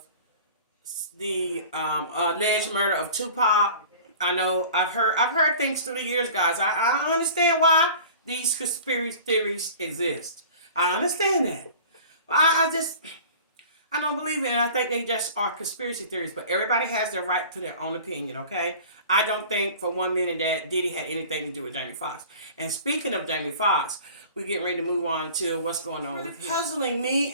the alleged murder of Tupac. I know I've heard things through the years, guys. I understand why these conspiracy theories exist. I understand that. But I don't believe it, and I think they just are conspiracy theories. But everybody has their right to their own opinion, okay? I don't think for 1 minute that Diddy had anything to do with Jamie Foxx. And speaking of Jamie Foxx, we're getting ready to move on to what's going on with him. Puzzling me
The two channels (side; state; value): both; inverted; correlation -0.42